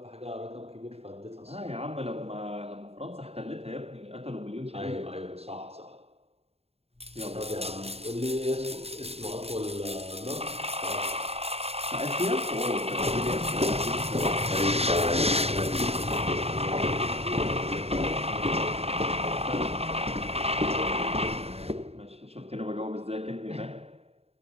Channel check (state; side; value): late; left; 0.29 ms